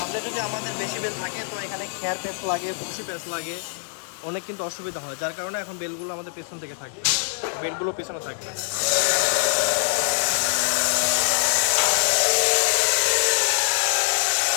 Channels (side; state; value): right; silent; digital silence